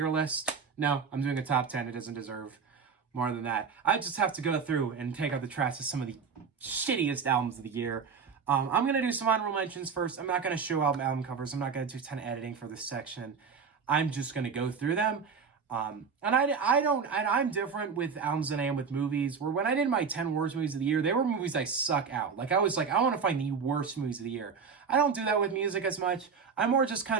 list. No, I'm doing a top 10. It doesn't deserve more than that. I just have to go through and take out the trash of some of the shittiest albums of the year. I'm going to do some honorable mentions first. I'm not going to show album covers. I'm not going to do a ton of editing for this section. I'm just going to go through them. I'm different with albums than I am with movies, where when I did my 10 worst movies of the year, they were movies I suck out. Like, I was like, I want to find the worst movies of the year. I don't do that with music as much. I more just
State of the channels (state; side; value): quieter; left; 5.9 dB